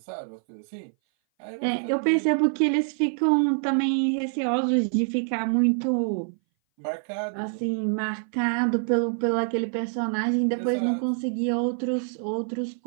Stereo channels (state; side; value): silent; left; 59 dB below the other